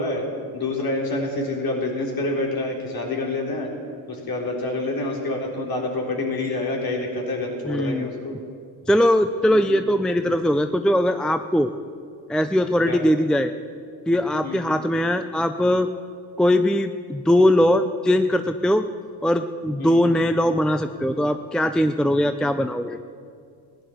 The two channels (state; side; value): normal; both; correlation 0.78